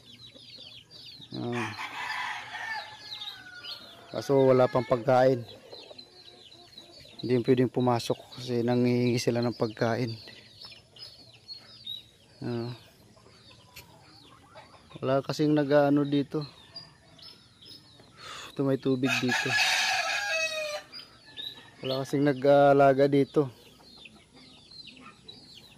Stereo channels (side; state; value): both; identical; correlation 1.00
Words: Kaso wala pang pagkain. Hindi pwedeng pumasok kasi nangihingi sila ng pagkain. Wala kasing nag-ano dito. Ito may tubig dito. Wala kasing nag-alaga dito.